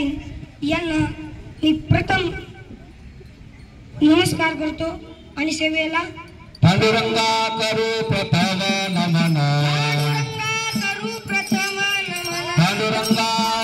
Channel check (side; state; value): both; identical; correlation 1.00